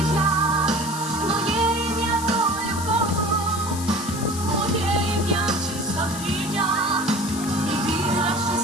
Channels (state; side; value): noise; left; hiss, 9 dB below the sound